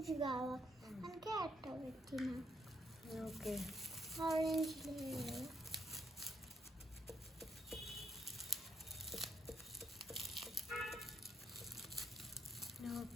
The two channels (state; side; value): normal; both; correlation 0.74